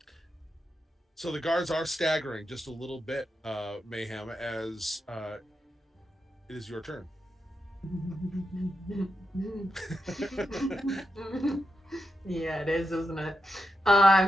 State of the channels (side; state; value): both; normal; correlation 0.87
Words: So the guards are staggering just a little bit, Mayhem, as it is your turn. Yeah, it is, isn't it?